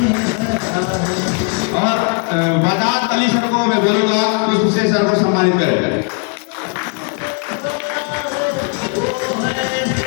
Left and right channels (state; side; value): quieter; right; 35.5 dB